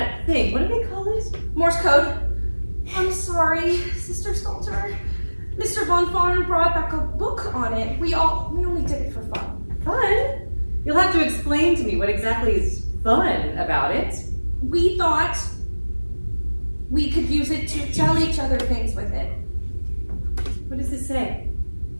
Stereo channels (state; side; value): inverted; both; correlation -1.00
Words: thing. What do they call it? Morse code. I'm sorry, Sister Stalter. Mr. Von Farn brought back a book on it. We only did it for fun. Fun? You'll have to explain to me what exactly is fun about it. We thought we could use it to tell each other things with it. What does it say?